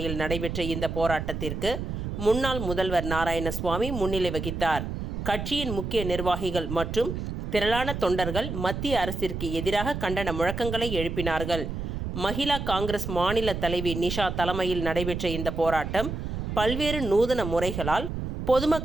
நடைபெற்ற இந்த போராட்டத்திற்கு முன்னாள் முதல்வர் நாராயணசுவாமி முன்னிலை வகித்தார். கட்சியின் முக்கிய நிர்வாகிகள் மற்றும் திரளான தொண்டர்கள் மத்திய அரசிற்கு எதிராக கண்டன முழக்கங்களை எழுப்பினார்கள். மகிழா காங்கிரஸ் மாநில தலைவி நிஷா தலைமையில் நடைபெற்ற இந்த போராட்டம் பல்வேறு நூதன முறைகளால்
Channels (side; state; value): right; noise; rumble, 5 dB below the sound